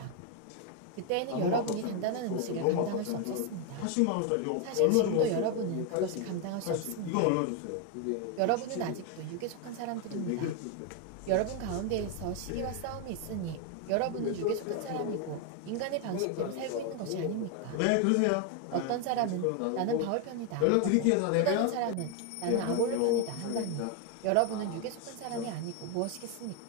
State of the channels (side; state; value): both; different; correlation 0.01